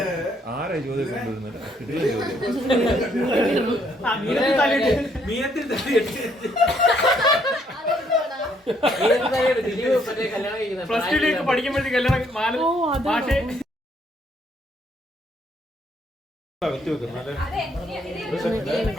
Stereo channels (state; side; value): normal; both; correlation 0.69